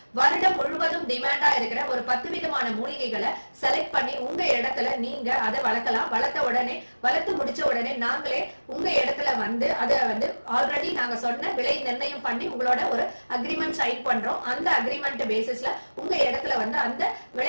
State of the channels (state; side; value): inverted; both; correlation -1.00